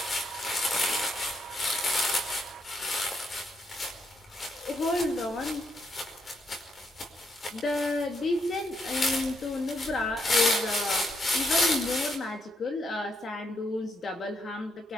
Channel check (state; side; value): normal; both; correlation 0.78